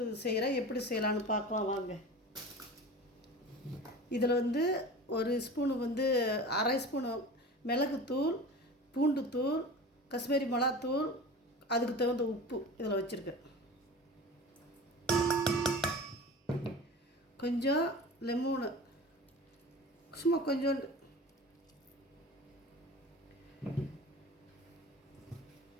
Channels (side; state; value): both; normal; correlation 0.35